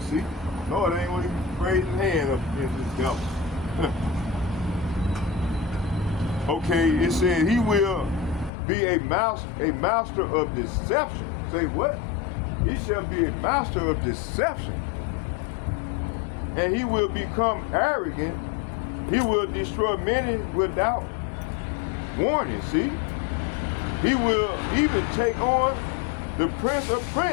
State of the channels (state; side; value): drops out; right; at 8.5 s